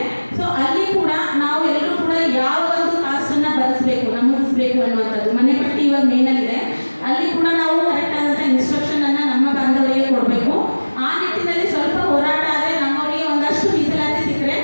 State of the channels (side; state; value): both; inverted; correlation -1.00